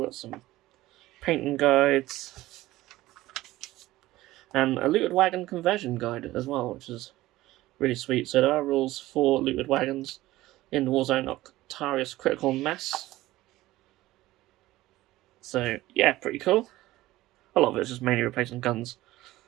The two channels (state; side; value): quieter; left; 17.0 dB